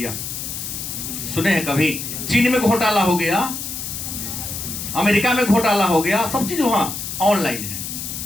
सुने हैं कभी? चीन में घोटाला हो गया, अमेरिका में घोटाला हो गया, सब चीज वहां ऑनलाइन है।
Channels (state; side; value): noise; left; hiss, 6 dB below the sound